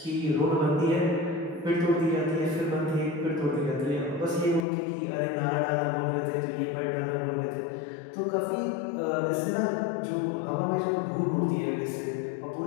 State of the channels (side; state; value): right; drops out; at 4.7 s